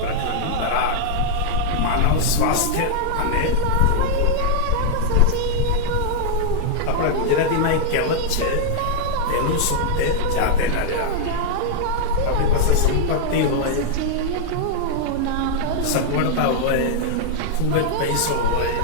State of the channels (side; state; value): both; different; correlation -0.01